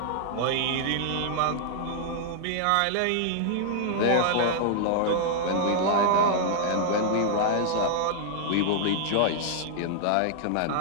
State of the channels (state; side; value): different; both; correlation -0.01